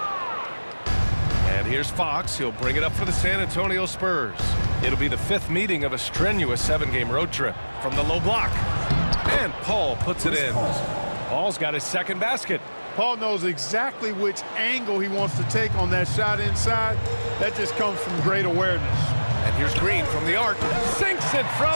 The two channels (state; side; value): inverted; both; correlation -1.00